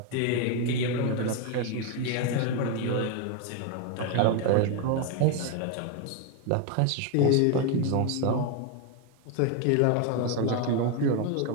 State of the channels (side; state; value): both; different; correlation 0.02